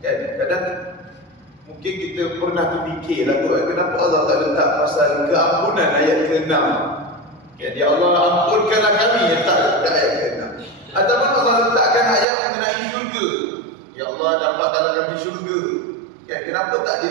Kan? Kadang mungkin kita pernah terfikirlah tu, kenapa Allah tak letak pasal keampunan ayat ke-6. Ya Allah ampunkanlah kami, letak ayat ke-6. Ataupun Allah letakkan ayat mengenai syurga, ya Allah dapatkanlah kami syurga. Kenapa tak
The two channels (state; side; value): drops out; left; at 12.2 s